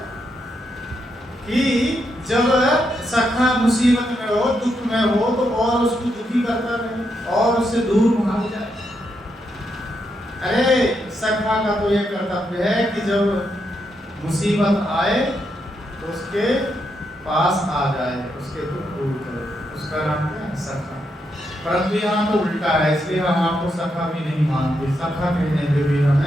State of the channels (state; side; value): normal; both; correlation 0.81